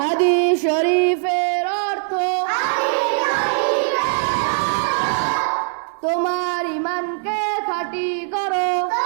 শরীফের অর্থ, তোমার ঈমানকে খাঁটি করো,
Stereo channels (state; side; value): silent; left; digital silence